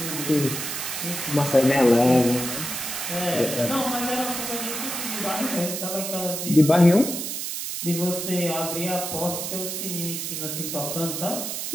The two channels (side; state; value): right; noise; hiss, 4 dB below the sound